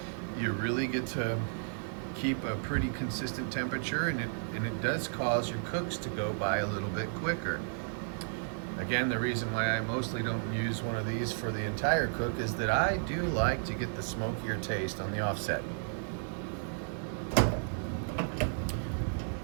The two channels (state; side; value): silent; left; digital silence